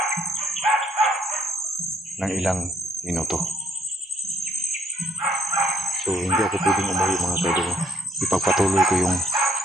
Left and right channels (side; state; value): both; normal; correlation 0.67